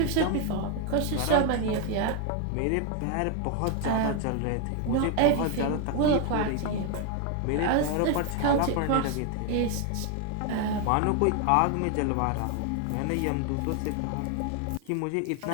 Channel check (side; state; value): both; different; correlation 0.01